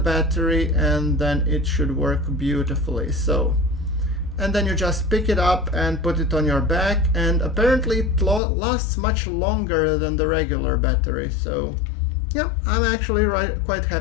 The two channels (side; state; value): right; drops out; at 8.4 s